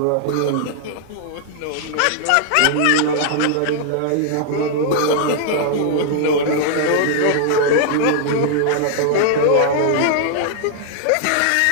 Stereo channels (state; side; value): different; both; correlation -0.01